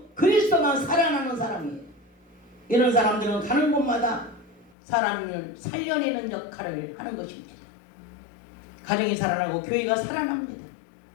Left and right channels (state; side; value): drops out; right; at 4.8 s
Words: 그리스도만 살아나는 사람이에요. 이런 사람들은 가는 곳마다 사람을 살려내는 역할을 하는 것입니다. 가정이 살아나고 교회가 살아납니다.